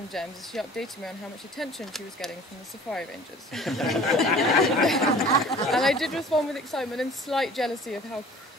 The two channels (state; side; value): normal; both; correlation 0.47